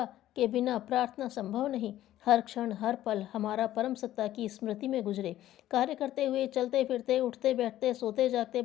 के बिना प्रार्थना संभव नहीं। हर क्षण हर पल हमारा परम सत्ता की स्मृति में गुजरे। कार्य करते हुए, चलते फिरते, उठते बैठते, सोते जागते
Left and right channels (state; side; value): quieter; right; 13.5 dB